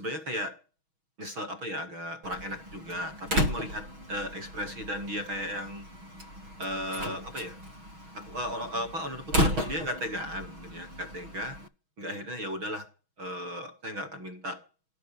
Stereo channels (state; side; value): late; left; 6.2 ms